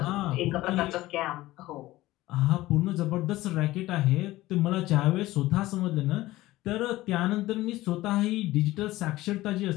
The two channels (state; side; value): quieter; right; 17.3 dB